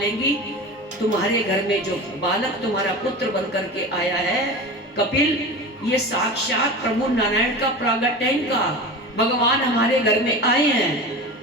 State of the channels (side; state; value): both; normal; correlation 0.31